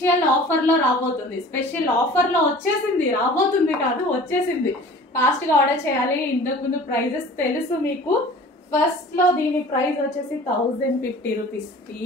ఆఫర్ లో రాబోతుంది. స్పెషల్ ఆఫర్ లో వచ్చేసింది, రాబోతుంది కాదు వచ్చేసింది. ఫాస్ట్ గా ఆర్డర్ చేయాలి. ఇంతకు ముందు ప్రైజెస్ తెలుసు మీకు. ఫస్ట్ లో దీని ప్రైస్ వచ్చేసి 1050 రూపీస్. ఈ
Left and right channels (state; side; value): normal; both; correlation 0.44